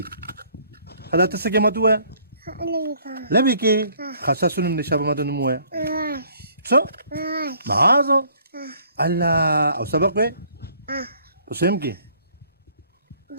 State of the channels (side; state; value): both; inverted; correlation -0.60